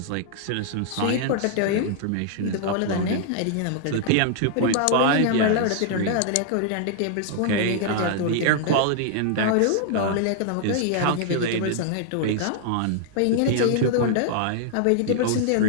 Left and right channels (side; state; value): both; different; correlation 0.00